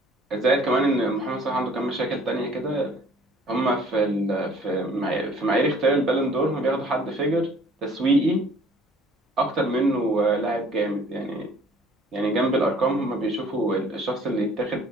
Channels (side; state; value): both; normal; correlation 0.54